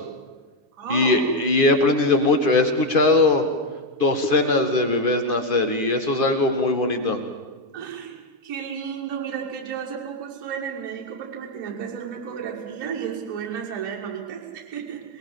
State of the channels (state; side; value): late; left; 2.5 ms